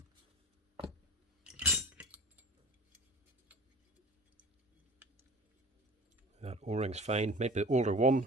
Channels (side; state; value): both; normal; correlation 0.40